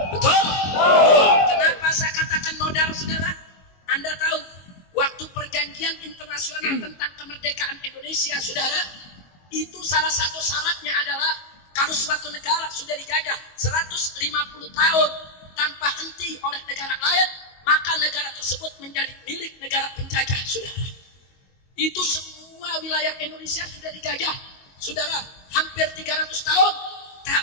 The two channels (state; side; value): late; right; 22 ms